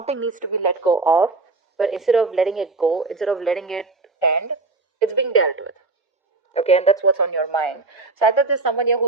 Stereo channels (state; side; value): quieter; left; 3.5 dB